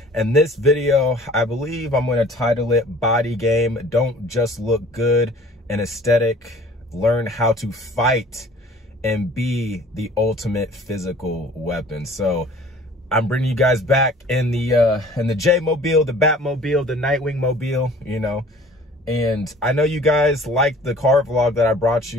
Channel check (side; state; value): both; normal; correlation 0.49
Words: in this video, I believe I'm going to title it Body Game. Don't just look good and aesthetic. Learn how to fight and be the ultimate physical weapon. So I'm bringing you guys back in the J-Mobile, the Batmobile, the Nightwing Mobile, you know. And I know you guys liked the car vlog that I brought